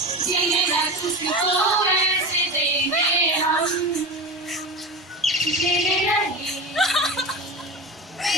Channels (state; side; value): normal; both; correlation 0.25